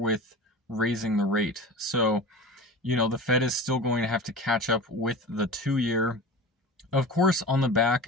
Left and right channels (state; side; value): normal; both; correlation 0.33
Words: raising the rate. So, the Fed is still going to have to catch up with the 2-year. Of course, on the